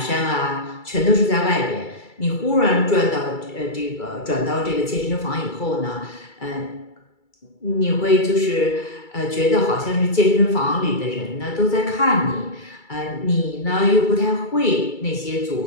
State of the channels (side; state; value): right; late; 2.3 ms